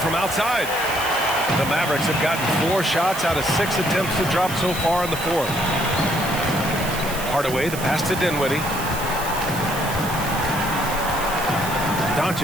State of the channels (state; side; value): noise; right; hiss, 10 dB below the sound